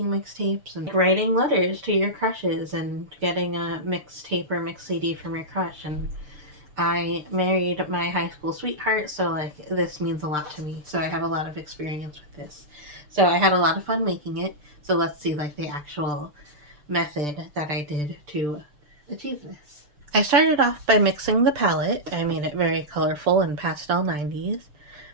mixtapes and writing letters to your crushes and getting a mixtape or mix CD from your crush. And I married my high school sweetheart, so like this means a lot to me. So I have a lot of experience with this. So I had a lot of fun making it. So let's see like the actual method that I did to achieve this. I started off by mixing the palette. I made it very colorful and pastel 90s.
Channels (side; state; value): left; late; 6.7 ms